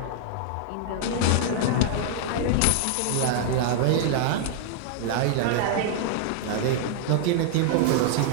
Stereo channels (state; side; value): different; both; correlation -0.01